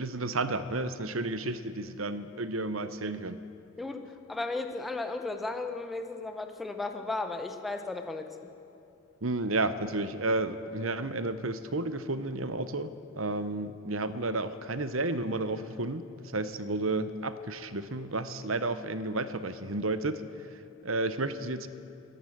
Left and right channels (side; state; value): both; normal; correlation 0.03